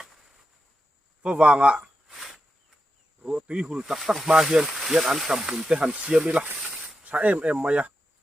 phơ vàng ạ rùa túi hùn tắc tắc ma hiên hiên ăn trầm hùn te hàn xiêm đi là sa em mày ạ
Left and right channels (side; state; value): both; normal; correlation 0.88